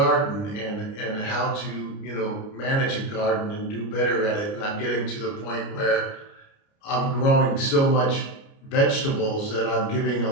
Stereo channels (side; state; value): right; late; 29 ms